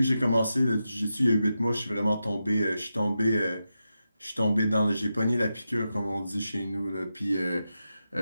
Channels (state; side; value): inverted; both; correlation -0.89